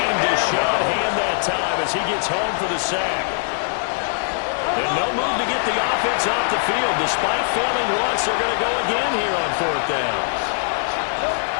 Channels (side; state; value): right; silent; 58 dB below the other